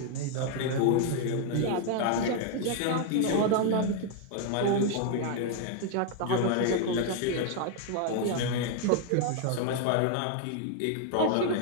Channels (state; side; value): different; both; correlation 0.00